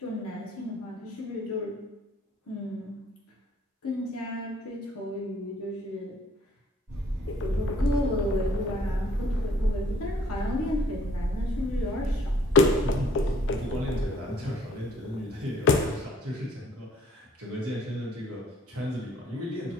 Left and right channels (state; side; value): normal; both; correlation 0.60